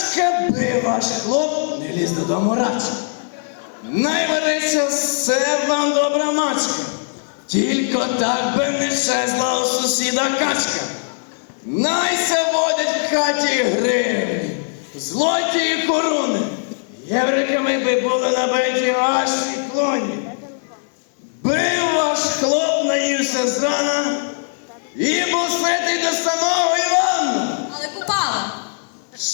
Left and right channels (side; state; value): right; silent; digital silence